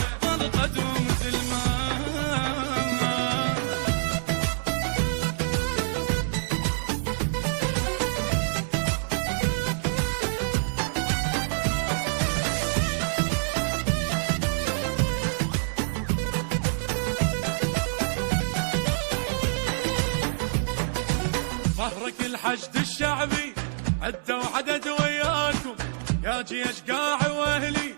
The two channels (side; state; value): left; silent; digital silence